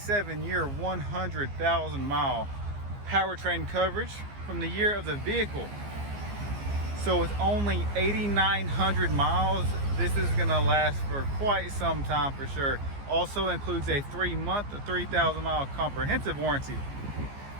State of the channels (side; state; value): left; late; 15 ms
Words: 100,000 mile powertrain coverage from the year of the vehicle. So with only 8,900 miles, this is gonna last for quite some time for sure. Also includes a 3-month, 3,000 mile comprehensive warranty.